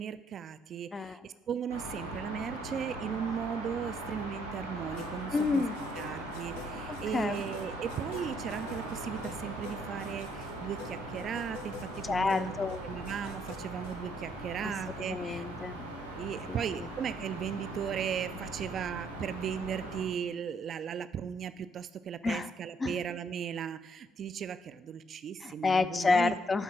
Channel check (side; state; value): both; normal; correlation 0.68